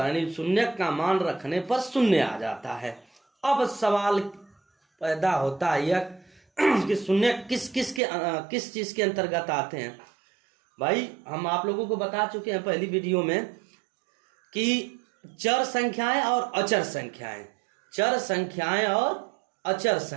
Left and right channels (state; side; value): drops out; left; at 8.0 s